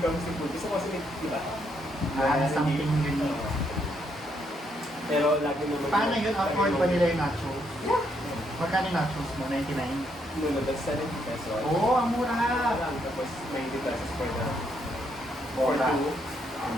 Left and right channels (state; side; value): normal; both; correlation 0.75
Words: comes to food, gusto ko kasi, di ba? Something unique. Pero lagi naman. Paano yun? Afford ba nila yung nachos? Yeah. Magkano yung nachos mo? 99? No, that's 70 pesos. Oo, ang mura! Tapos 90 pesos for the Mura. 2, and